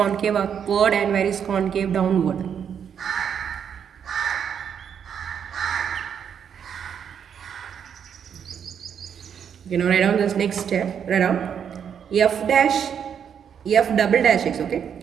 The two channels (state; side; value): quieter; left; 8.0 dB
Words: upward and where is concave downward? You know, write down this next step. Write down f double dash x. Okay,